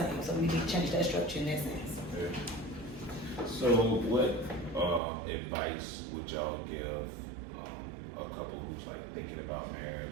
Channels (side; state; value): left; drops out; at 5.0 s